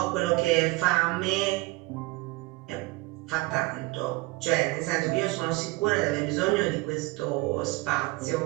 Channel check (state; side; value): quieter; left; 22.2 dB